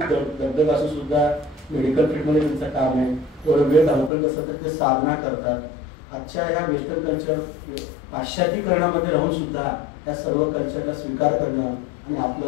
दगदग असून सुद्धा मेडिकल फील्डमध्ये त्यांचं काम आहे. थोडं वेळ धावपळ कसं तर ते साधना करतात. आजच्या ह्या वेस्टर्न कल्चर पाश्चात्तीकरणामध्ये राहून सुद्धा या सर्व कल्चरला स्वीकार करणं आणि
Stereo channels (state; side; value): drops out; right; at 4.1 s